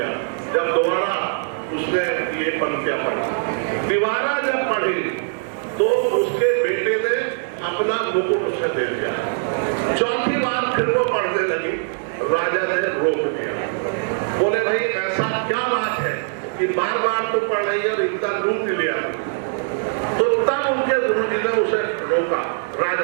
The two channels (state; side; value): silent; left; 64 dB below the other